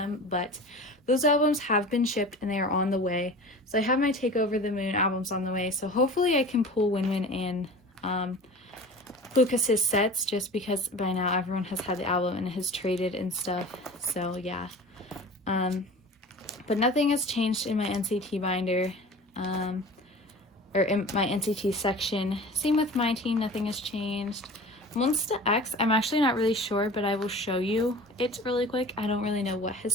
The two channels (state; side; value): normal; both; correlation 0.38